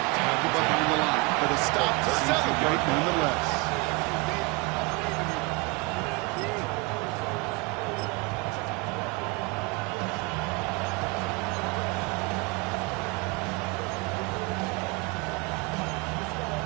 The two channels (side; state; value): left; quieter; 26.8 dB